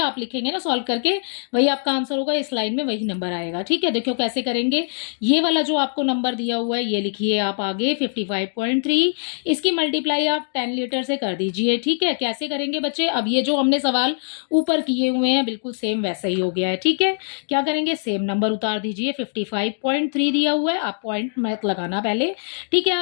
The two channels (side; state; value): right; silent; digital silence